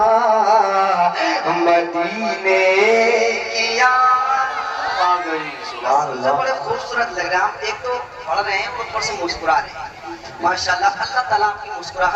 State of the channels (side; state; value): both; identical; correlation 1.00